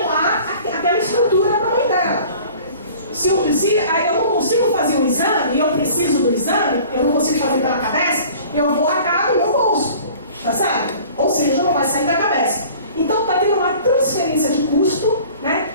aquela estrutura para a mãe dela. Se eu não consigo fazer um exame, e eu preciso do exame, eu não consigo fazer pela Cabesp, eu vou arcar no meu bolso, tá certo? Ou seja, não vai sair da Cabesp. Então está tendo uma transferência de custo, né,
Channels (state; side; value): inverted; both; correlation -0.47